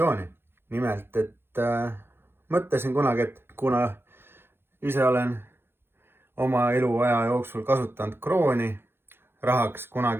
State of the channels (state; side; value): late; left; 0.11 ms